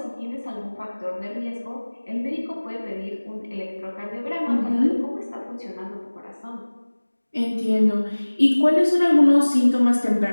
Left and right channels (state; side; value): inverted; both; correlation -1.00